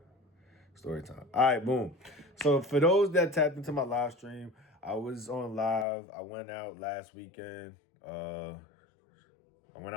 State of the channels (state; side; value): drops out; right; at 5.9 s